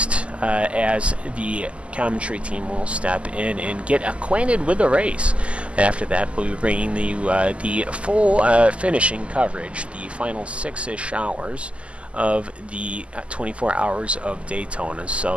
as the commentary team will step in and get acquainted with the race. After that, we'll be bringing the full finishing coverage, the final 6-ish hours of the 24 Hours of Daytona.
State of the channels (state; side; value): late; left; 0.057 ms